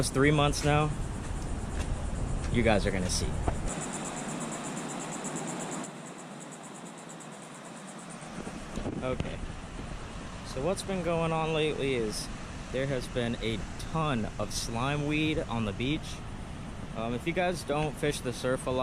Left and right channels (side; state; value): both; identical; correlation 1.00